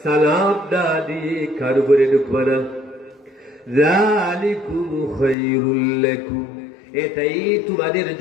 সালাম না দিয়ে কারো ঘরে ঢুকবা না। যালিকুম খায়রুল লাকুম, এটাই তোমাদের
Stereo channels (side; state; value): right; drops out; at 5.4 s